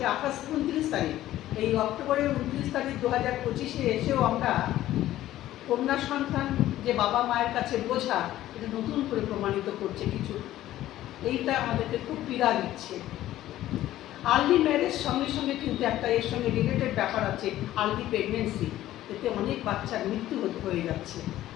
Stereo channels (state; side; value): quieter; right; 14.1 dB